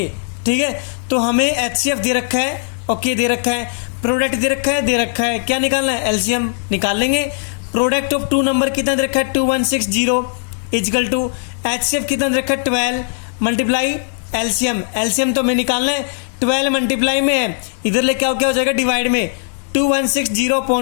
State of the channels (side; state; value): right; silent; 60 dB below the other